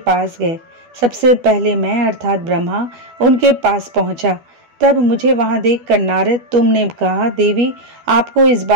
गए। सबसे पहले मैं अर्थात ब्रह्मा उनके पास पहुंचा। तब मुझे वहां देखकर नारद, तुमने कहा, देवी आपको इस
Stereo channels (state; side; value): late; left; 12 ms